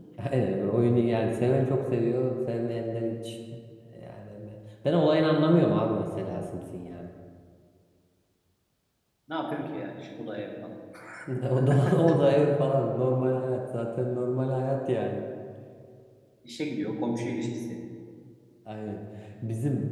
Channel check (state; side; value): identical; both; correlation 1.00